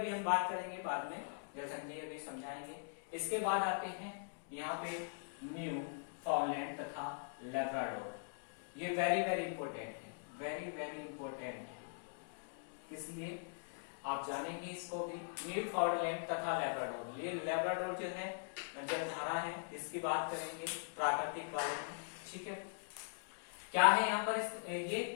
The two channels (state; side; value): silent; right; digital silence